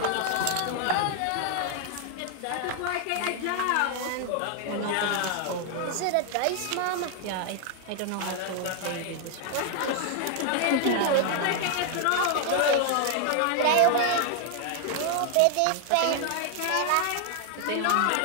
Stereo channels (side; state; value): both; different; correlation 0.00